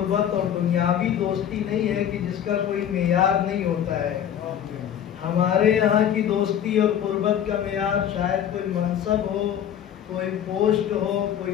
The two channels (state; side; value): quieter; right; 9.7 dB